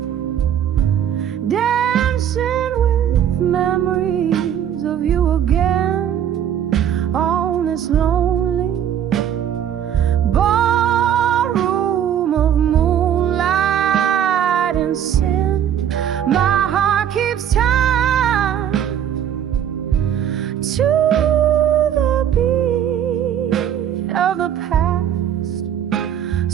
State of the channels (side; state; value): left; quieter; 9.7 dB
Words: dancing with memories of you again, on this lonely ballroom of moonlight and sin. My heart keeps time to the beat of the past,